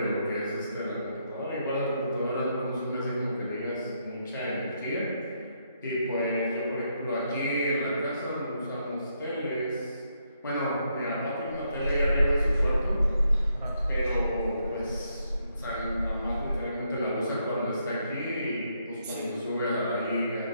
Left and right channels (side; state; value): both; inverted; correlation -0.77